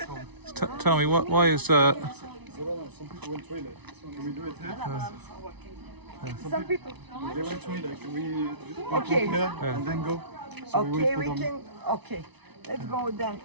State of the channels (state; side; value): late; left; 0.99 ms